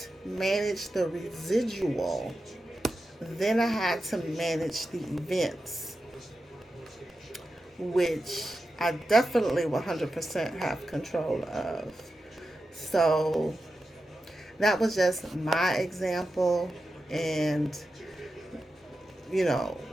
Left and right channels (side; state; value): both; normal; correlation 0.91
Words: manage the residual, then I had to manage the events, which I definitely 100% have control of. So that was just my example and,